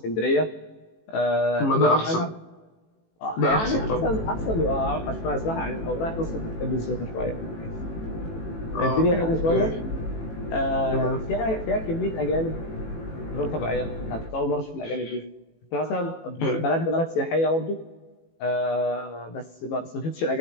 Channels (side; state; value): right; late; 18 ms